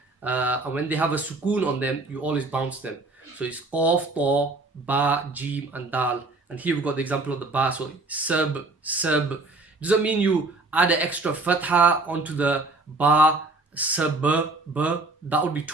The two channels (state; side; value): quieter; left; 3.2 dB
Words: And when they have a sukoon on them, you always bounce them. So it's qaf, ta, ba, jim, and dal. And here we've got the example of the ba. So sab. Doesn't mean you add an extra fatha onto the ba, sab, ba. That would be